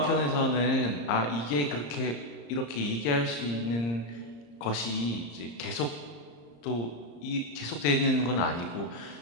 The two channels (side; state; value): right; late; 34 ms